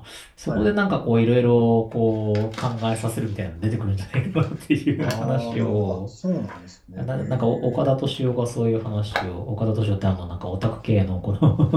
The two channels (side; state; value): both; identical; correlation 1.00